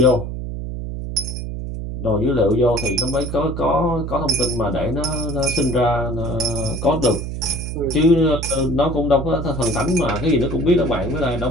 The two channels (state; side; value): noise; right; hum, 6 dB below the sound